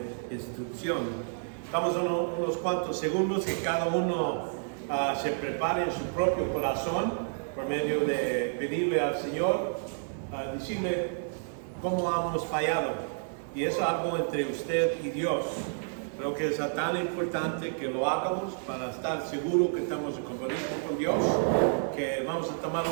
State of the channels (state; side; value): silent; left; digital silence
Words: instrucción. Estamos unos cuantos segundos que cada uno se prepare en su propio corazón por medio de pedirle al Señor, decirle cómo hemos fallado. Y eso es algo entre usted y Dios. Creo que es tan importante que lo hagamos para estar seguros que estamos en compromiso con Dios, que vamos a tomar